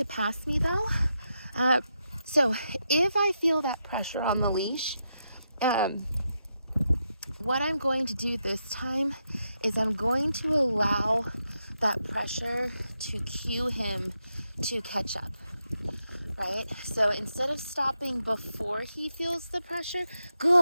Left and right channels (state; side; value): inverted; both; correlation -0.84